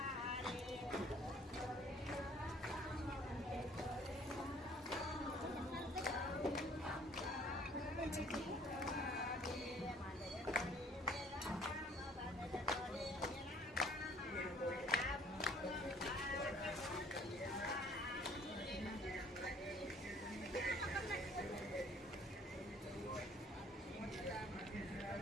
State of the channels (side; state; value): both; normal; correlation 0.57